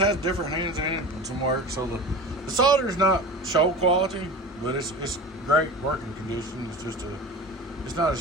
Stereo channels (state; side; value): normal; both; correlation 0.33